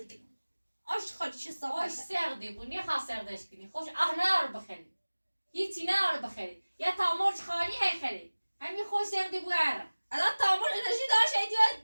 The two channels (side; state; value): both; inverted; correlation -1.00